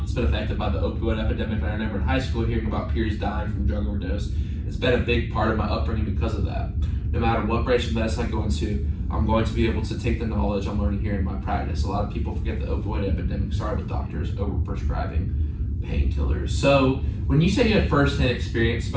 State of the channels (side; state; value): both; identical; correlation 1.00